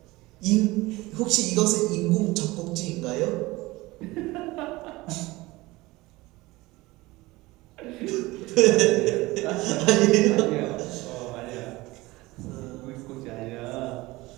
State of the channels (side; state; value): left; quieter; 20.6 dB